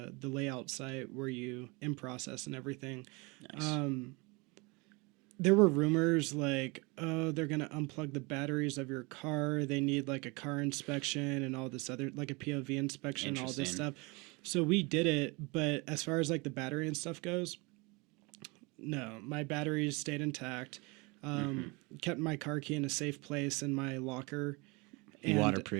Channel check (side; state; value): left; quieter; 27.3 dB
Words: layout site where you in process and everything. Nice. There were rumors like, oh, they're gonna unplug the batteries of your car. They need like a car inspection and all this other, like a POV inspection, all this stuff. So we did it, but as far as like the battery and stuff goes, no, my batteries stayed intact. Kept my car key in a safe place in my locker. You